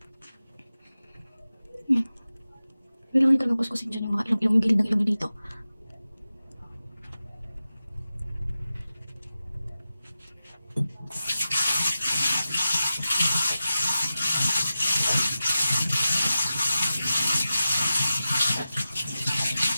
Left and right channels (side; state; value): both; inverted; correlation -0.94